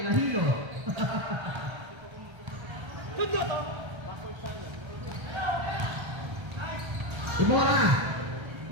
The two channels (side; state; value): left; late; 1.3 ms